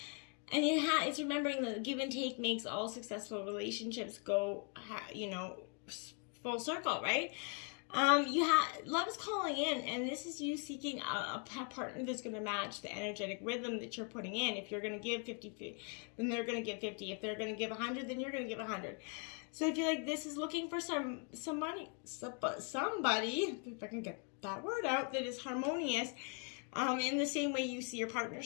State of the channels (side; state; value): right; quieter; 39.9 dB